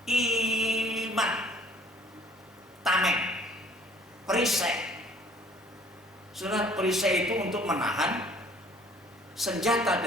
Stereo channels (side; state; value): both; normal; correlation 0.55